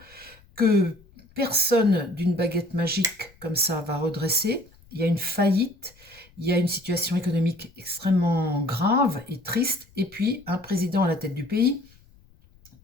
que personne d'une baguette magique comme ça va redresser. Il y a une faillite, il y a une situation économique extrêmement grave et triste, et puis un président à la tête du pays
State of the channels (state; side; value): noise; left; rumble, 28 dB below the sound